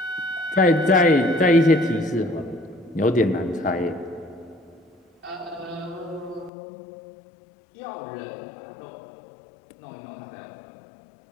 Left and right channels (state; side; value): drops out; right; at 6.5 s